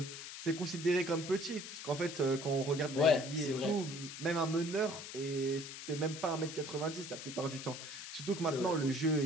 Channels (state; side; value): noise; left; hiss, 10 dB below the sound